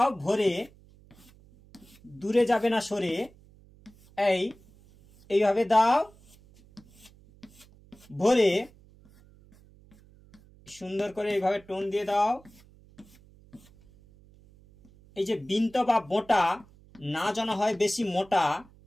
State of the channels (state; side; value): noise; right; hum, 26 dB below the sound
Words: ভরে, দূরে যাবে না সরে। এইভাবে দাও ভরে, সুন্দর করে এইভাবে টোন দিয়ে দাও। এই যে বিন্ত বা বোঁটা না যেন হয় বেশি মোটা,